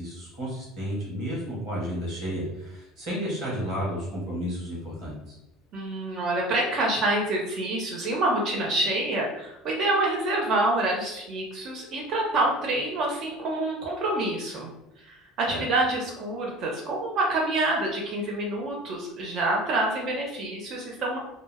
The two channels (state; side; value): normal; both; correlation 0.40